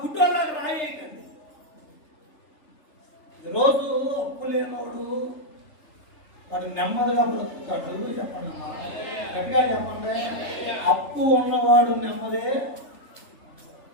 గుడ్డోళ్ళకి రాయేయకండి. ఈరోజు అప్పు లేనోడు వాడు నెమ్మదిగా బ్రతుకుతాడు. చెప్పండి, గట్టిగా చెప్పండి. అప్పు ఉన్నవాడు నెమ్మదే,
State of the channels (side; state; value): right; late; 3.3 ms